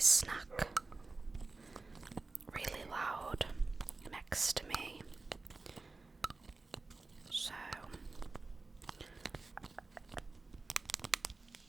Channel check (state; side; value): quieter; left; 3.7 dB